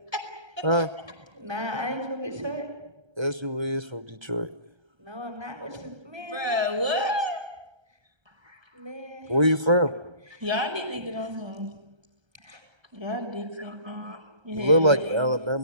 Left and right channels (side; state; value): left; late; 1.3 ms